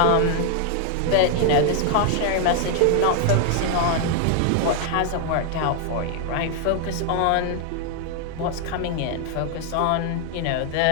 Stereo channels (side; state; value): both; different; correlation 0.00